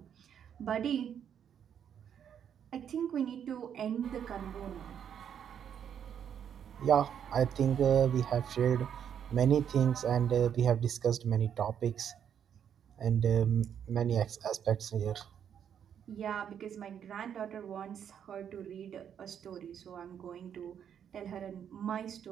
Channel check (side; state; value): left; quieter; 8.7 dB